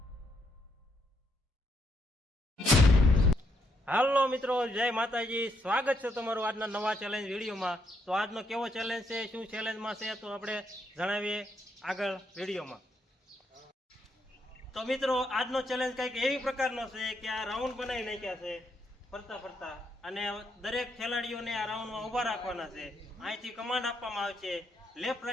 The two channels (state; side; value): normal; both; correlation 0.76